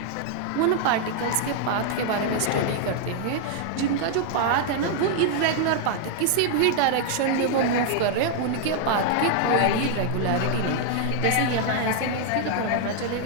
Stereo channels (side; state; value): both; different; correlation 0.00